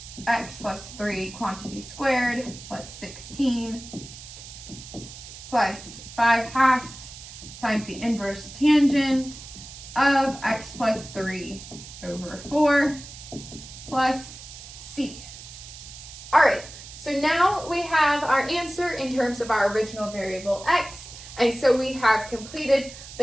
x plus 3 quantity squared plus 16 plus 5/2 times the inverse tangent of x plus 3 over 4 plus c. All right, so now we have our answer in terms of our original variable x, and so we have completed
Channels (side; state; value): right; noise; hiss, 15 dB below the sound